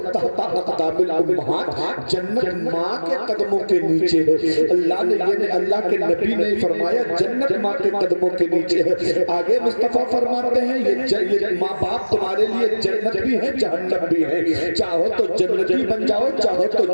تحت اقدام الامہات، جنت ماں کے قدموں کے نیچے ہے۔ اللہ کے نبی نے فرمایا جنت ماں کے قدموں کے نیچے ہے۔ آگے مصطفیٰ فرماتے ہیں یہ ماں باپ تمہارے لیے جنت بھی ہے جہنم بھی ہے، چاہو تو جنتی بن جاؤ چاہو تو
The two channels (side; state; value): both; inverted; correlation -1.00